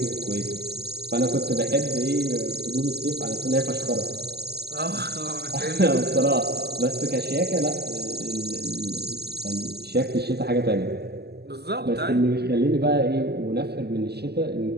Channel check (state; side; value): late; left; 0.47 ms